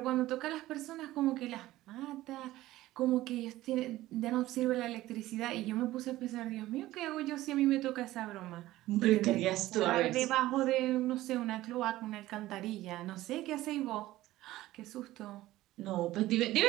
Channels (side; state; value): left; quieter; 16.2 dB